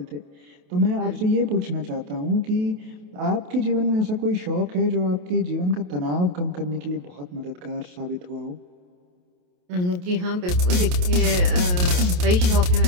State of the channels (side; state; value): left; late; 28 ms